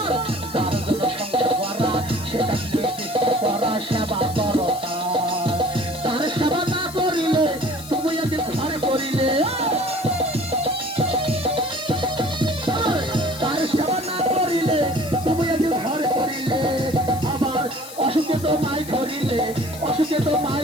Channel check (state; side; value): noise; left; hiss, 15 dB below the sound